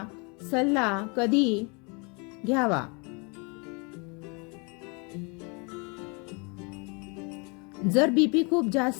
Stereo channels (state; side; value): quieter; right; 32.1 dB